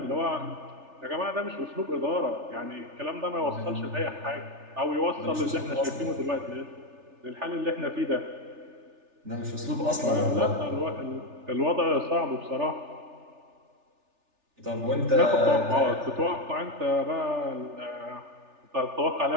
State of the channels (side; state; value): left; late; 3.4 ms